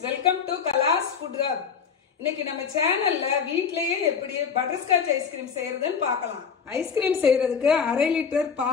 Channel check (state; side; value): quieter; right; 6.4 dB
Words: welcome to Kala's Food Hub. இன்னைக்கு நம்ம சேனல்ல வீட்லயே எப்படி பட்டர்ஸ்காட்ச் ஐஸ்கிரீம் செய்யறதுன்னு பார்க்கலாம். ஐஸ்கிரீம் செய்யறதுக்கு 1/2 லிட்டர்